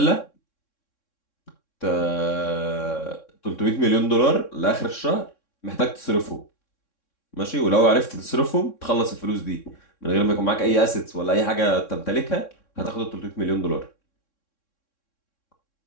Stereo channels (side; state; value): right; late; 3.6 ms